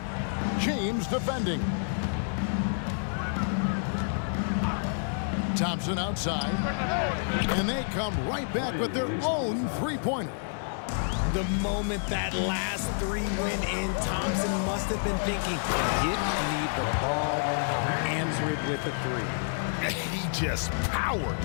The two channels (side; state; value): right; silent; 59 dB below the other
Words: James defending. Thompson outside. And they come right back with their own three-pointer. The moment that last three went in, Thompson must have been thinking, get me the ball, I'll answer it with a three. He just powered